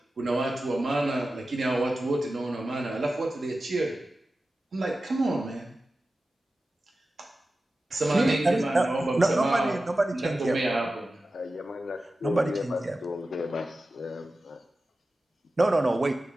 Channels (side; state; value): both; normal; correlation 0.94